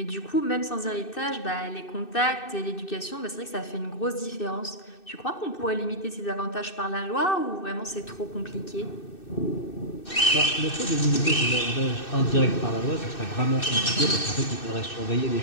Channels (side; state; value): right; late; 2.6 ms